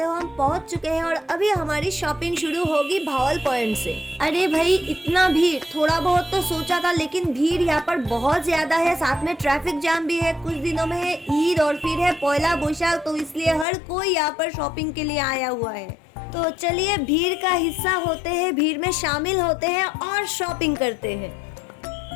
हो हम पहुंच चुके हैं और अभी हमारी शॉपिंग शुरू होगी भावल पॉइंट से। अरे भाई इतना भीड़, थोड़ा बहुत तो सोचा था लेकिन भीड़ यहाँ पर बहुत ज्यादा है। साथ में ट्रैफिक जाम भी है। कुछ दिनों में है ईद और फिर है पहला बैसाख, तो इसलिए हर कोई यहाँ पर शॉपिंग के लिए आया हुआ है। तो चलिए भीड़ का हिस्सा होते हैं, भीड़ में शामिल होते हैं और शॉपिंग करते हैं।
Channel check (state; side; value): drops out; right; at 13.7 s